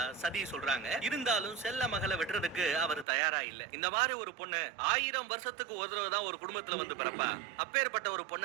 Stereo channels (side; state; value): left; drops out; at 3.1 s